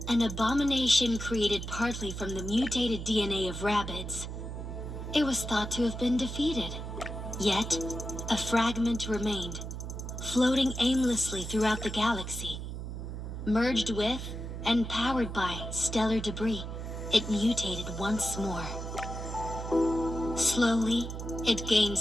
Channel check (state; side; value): noise; right; hum, 7 dB below the sound